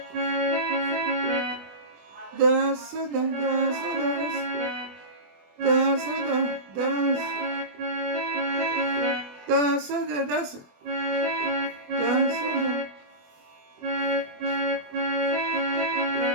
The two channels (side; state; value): left; late; 21 ms